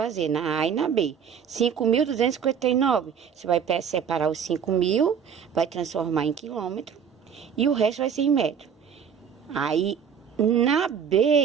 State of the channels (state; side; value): quieter; left; 7.5 dB